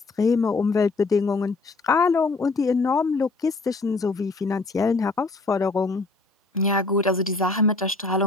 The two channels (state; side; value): quieter; right; 3.5 dB